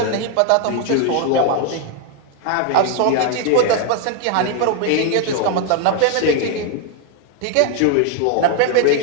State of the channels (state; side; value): different; both; correlation 0.00